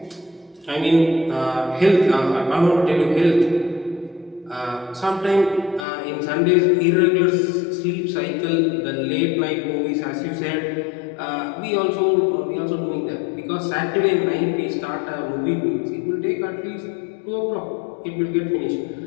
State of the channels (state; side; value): drops out; right; at 5.9 s